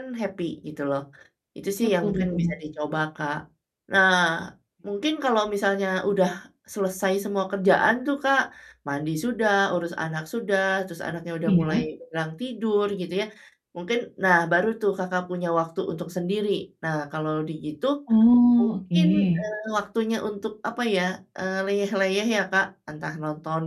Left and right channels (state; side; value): identical; both; correlation 1.00